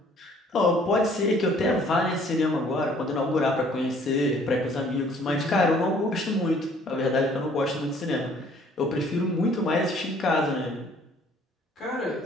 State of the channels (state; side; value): normal; both; correlation 0.58